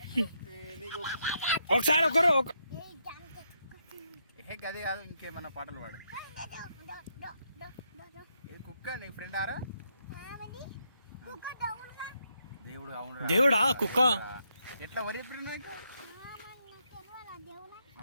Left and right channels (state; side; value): inverted; both; correlation -0.79